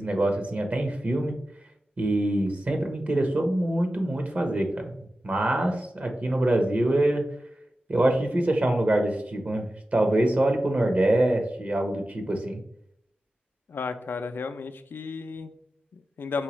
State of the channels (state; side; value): normal; both; correlation 0.93